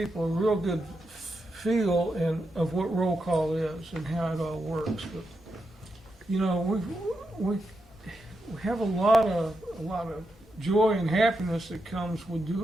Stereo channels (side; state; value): both; normal; correlation 0.85